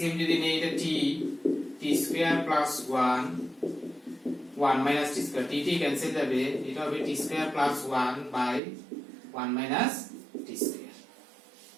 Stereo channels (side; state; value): left; drops out; at 8.6 s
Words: যদি নেই এটা t square plus 1 minus t square, t cancel যাবে, এটা হবে t square plus 1/1 minus t square.